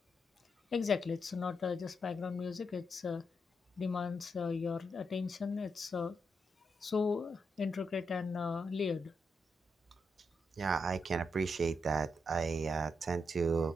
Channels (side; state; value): both; normal; correlation 0.82